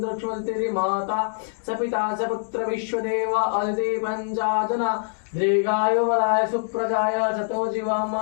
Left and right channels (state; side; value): silent; right; digital silence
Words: माता स पिता स पुत्र विश्वदेवा अदिति पञ्चाजना दीर्घायु बलाय सुप्रजाय शतो जीवाम